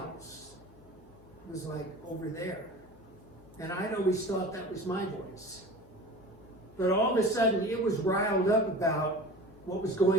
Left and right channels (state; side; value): noise; left; hum, 25 dB below the sound